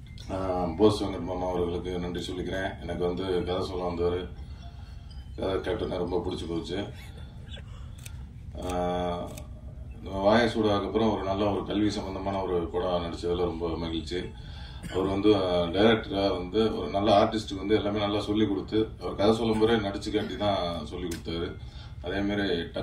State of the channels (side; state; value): both; identical; correlation 1.00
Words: போஸ் வெங்கட் மாமா அவர்களுக்கு நன்றி சொல்லிக்கிறேன். எனக்கு வந்து கதை சொல்ல வந்தவர், கதை கேப்டனை ரொம்ப பிடிச்சி போச்சு. வாயசூடாக்கு அப்புறம் ஒரு நல்ல ஒரு கல்வி சம்பந்தமான ஒரு படம் நடிச்சதுல ரொம்ப மகிழ்ச்சி. அவர் வந்து டைரக்டரா வந்து ஒரு நல்ல ஆர்டிஸ்டுக்கு வந்து எல்லாமே நல்லா சொல்லி கொடுத்து, அவர் கதை சொல்லும் போதே நடிச்சு காட்டி தான் சொல்லி கொடுத்தாரு. அதே மாதிரி